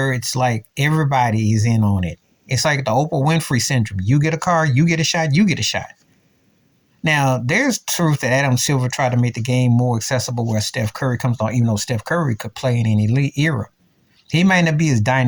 it's like everybody is in on it. It's like the Oprah Winfrey syndrome. You get a car, you get a shot, you get a shot. Now, there's truth that Adam Silver tried to make the game more accessible where Steph Curry comes on, even though Steph Curry could play in any elite era. He might not be as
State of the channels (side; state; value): both; identical; correlation 1.00